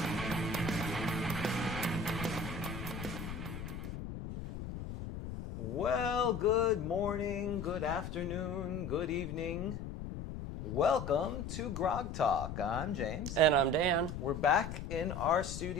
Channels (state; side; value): noise; left; rumble, 7 dB below the sound